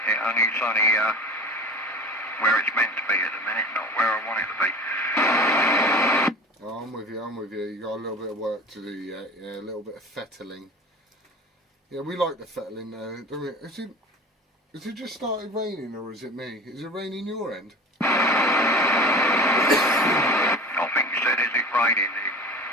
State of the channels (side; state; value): both; normal; correlation 0.37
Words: it's only where it's meant to be at the minute, not where I want it to be. Oh, I'm with you. You got a little bit of work to do yet. Yeah, a little bit of fettling. Yeah, we like the fettling now, don't we? Has it just started raining, or is it me? Is it raining your end? I think you said, is it raining?